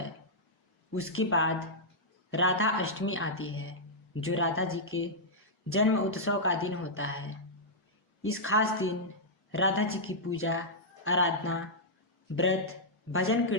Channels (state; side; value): normal; both; correlation -0.09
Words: उसके बाद राधा अष्टमी आती है जो राधा जी के जन्म उत्सव का दिन होता है। इस खास दिन राधा जी की पूजा, आराधना, व्रत, भजन